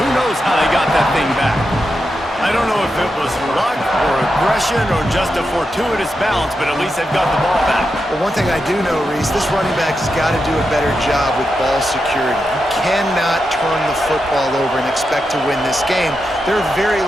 knows how they got that thing back. I don't know if it was luck or aggression or just a fortuitous bounce, but at least they've got the ball back. Well, one thing I do know, Reese, this running back has got to do a better job with ball security. You cannot turn the football over and expect to win this game. They're very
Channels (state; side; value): normal; both; correlation 0.87